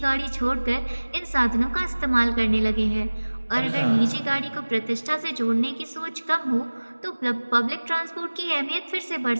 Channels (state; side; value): inverted; both; correlation -1.00